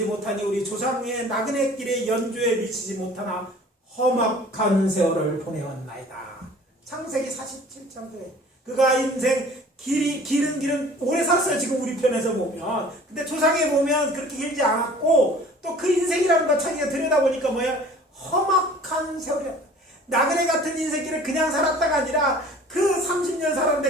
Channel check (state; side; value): normal; both; correlation 0.48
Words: 못하니 우리 조상의 나그네 길의 연조에 미치지 못하나 험악한 세월을 보내었나이다. 창세기 47장에 그가 인생 길은 오래 살았어요. 지금 우리 편에서 보면. 근데 조상에 보면 그렇게 길지 않았고 또 그 인생이라는 것 자기가 들여다보니까 험악한 세월이었다. 나그네 같은 인생길을 그냥 살았다가 아니라 그 30년